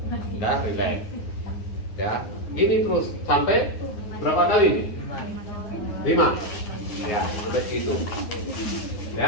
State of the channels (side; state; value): right; late; 9.6 ms